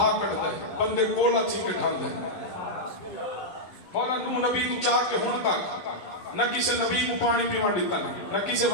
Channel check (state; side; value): late; right; 11 ms